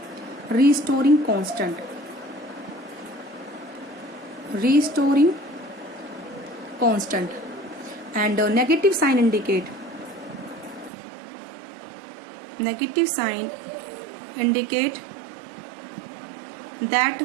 restoring constant, restoring constant. And negative sign indicate, negative sign indicate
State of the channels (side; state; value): left; drops out; at 10.9 s